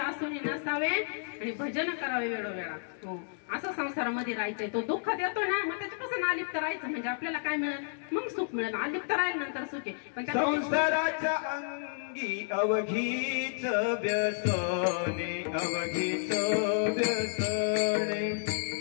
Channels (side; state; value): right; silent; digital silence